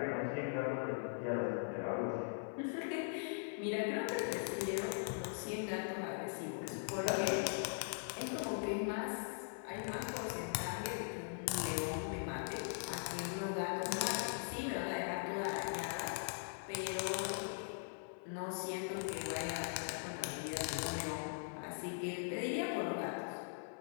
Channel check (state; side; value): silent; right; 50 dB below the other